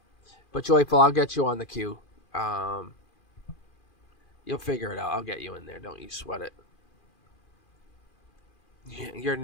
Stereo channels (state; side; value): late; right; 2.4 ms